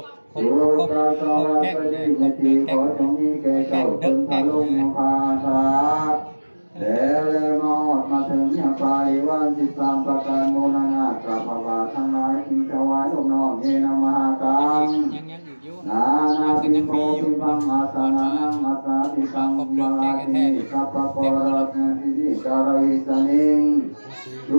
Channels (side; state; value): both; inverted; correlation -1.00